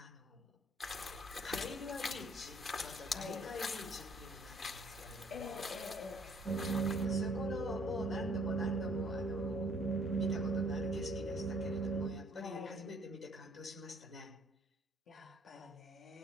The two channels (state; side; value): normal; both; correlation 0.61